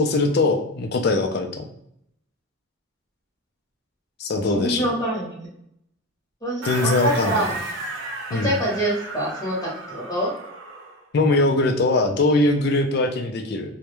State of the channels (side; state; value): both; normal; correlation 0.20